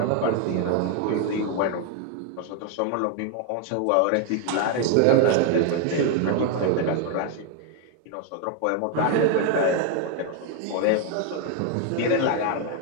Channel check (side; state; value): both; different; correlation 0.01